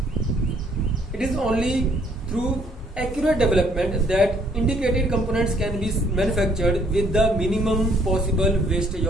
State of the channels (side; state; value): both; normal; correlation 0.65